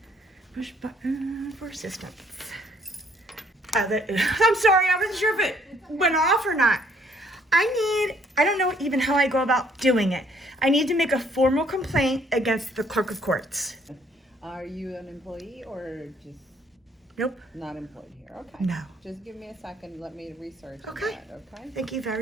Push button for assistance. I'm sorry, I wasn't sure if it went off or not. I don't know even how I go about doing it. I need to make a formal complaint against the clerk of courts. Are you an employee or just Nope. not employed here? Okay. No. Just give me a second. Let me research on Okay. that, okay? Thank you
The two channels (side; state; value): both; normal; correlation 0.64